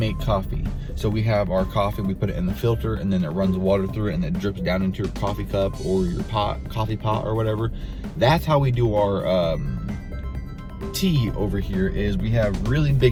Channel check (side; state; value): both; identical; correlation 1.00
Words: coffee. So we have our coffee, we put it in the filter, and then it runs water through it, and it drips down into your coffee cup or your coffee pot or whatever. That's how we do our tea over here. Is we have really